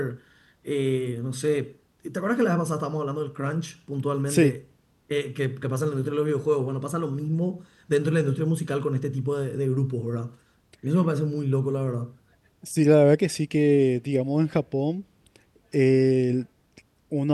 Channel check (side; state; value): both; identical; correlation 1.00